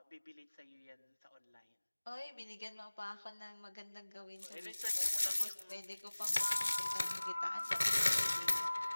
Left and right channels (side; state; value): both; inverted; correlation -1.00